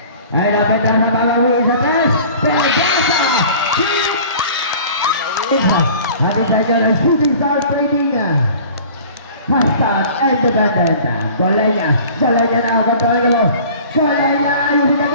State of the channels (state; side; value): inverted; both; correlation -0.45